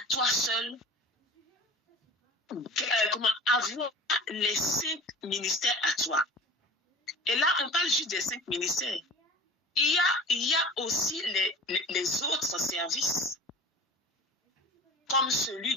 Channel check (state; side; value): normal; both; correlation 0.39